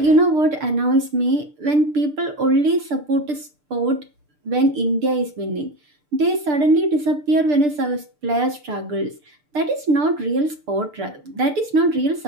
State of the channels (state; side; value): late; left; 6.7 ms